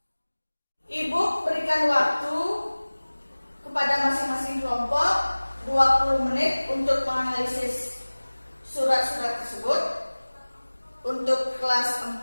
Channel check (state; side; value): inverted; both; correlation -1.00